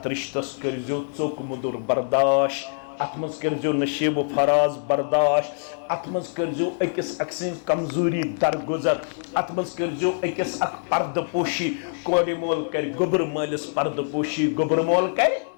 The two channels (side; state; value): right; silent; digital silence